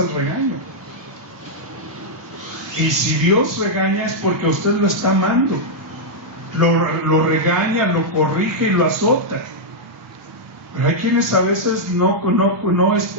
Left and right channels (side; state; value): both; normal; correlation -0.05